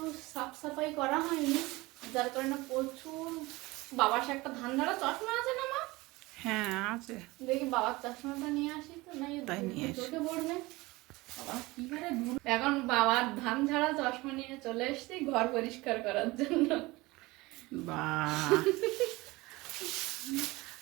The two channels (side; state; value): left; quieter; 21.6 dB